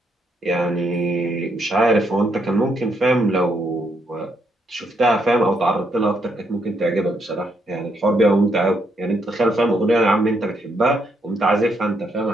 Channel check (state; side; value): normal; both; correlation 0.76